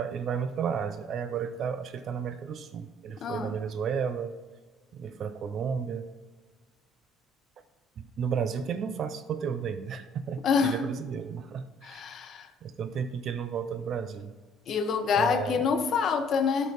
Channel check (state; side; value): normal; both; correlation 0.58